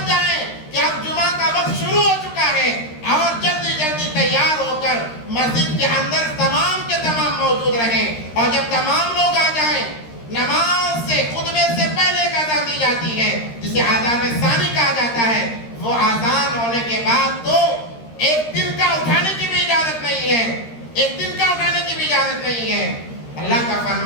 جائیں کہ اب جمعہ کا وقت شروع ہو چکا ہے اور جلدی جلدی تیار ہو کر مسجد کے اندر تمام کے تمام موجود رہیں. اور جب تمام لوگ آ جائیں، نماز سے خطبے سے پہلے ایک اذان دی جاتی ہے جسے اذان ثانی کہا جاتا ہے. وہ اذان ہونے کے بعد تو ایک دن کا اٹھانے کی بھی اجازت نہیں ہے، ایک دن کا اٹھانے کی بھی اجازت نہیں ہے. اللہ کا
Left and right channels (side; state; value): right; late; 13 ms